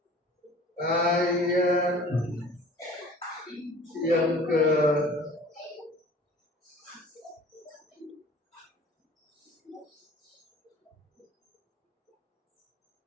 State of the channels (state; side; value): normal; both; correlation 0.46